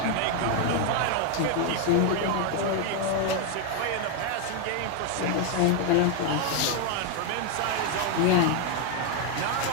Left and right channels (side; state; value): both; different; correlation 0.01